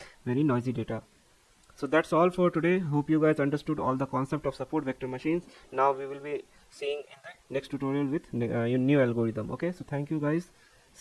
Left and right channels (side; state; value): both; identical; correlation 1.00